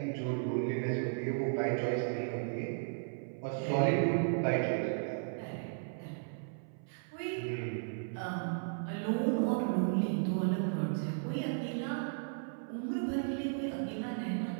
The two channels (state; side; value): silent; left; 54 dB below the other